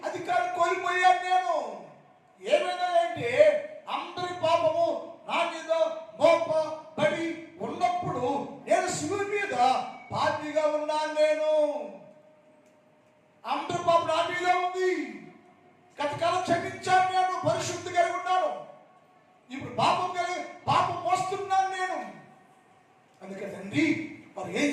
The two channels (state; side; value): identical; both; correlation 1.00